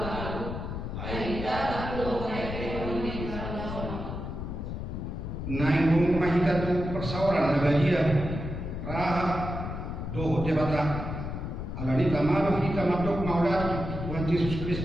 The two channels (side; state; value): left; noise; rumble, 5 dB below the sound